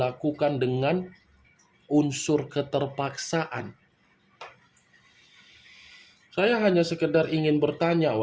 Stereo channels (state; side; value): identical; both; correlation 1.00